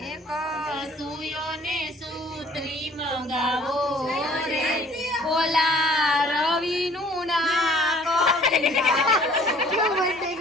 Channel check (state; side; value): normal; both; correlation 0.54